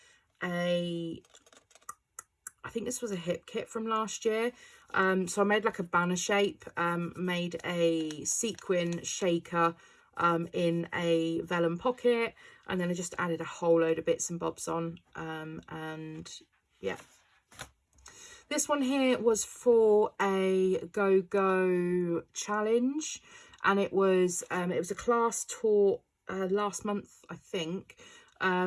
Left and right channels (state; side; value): identical; both; correlation 1.00